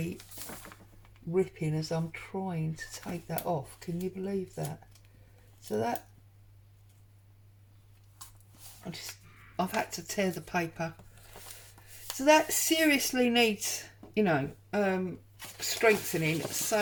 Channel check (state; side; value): identical; both; correlation 1.00